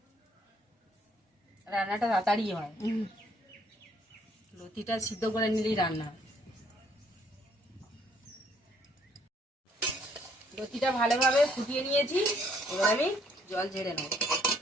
রান্নাটা তাড়াতাড়ি হয়, লতিটা সিদ্ধ করে নিলেই রান্না হয়। লতিটা ভালোভাবে ফুটিয়ে নিয়েছি, এবার আমি জল ঝেড়ে নেব।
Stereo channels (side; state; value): both; normal; correlation 0.66